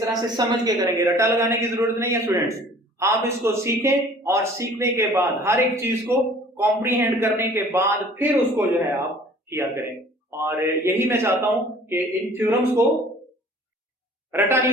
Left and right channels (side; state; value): both; normal; correlation 0.51